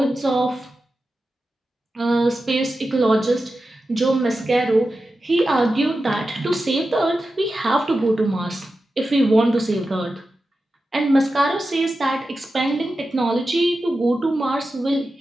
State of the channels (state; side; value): normal; both; correlation 0.92